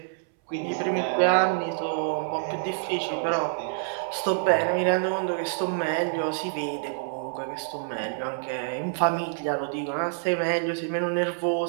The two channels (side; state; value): left; silent; 60 dB below the other